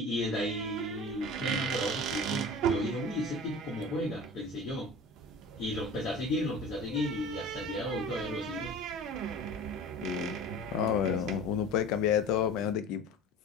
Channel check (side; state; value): both; normal; correlation 0.38